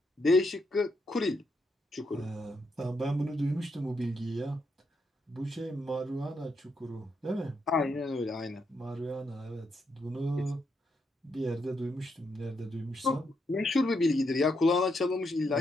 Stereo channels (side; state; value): both; normal; correlation 0.80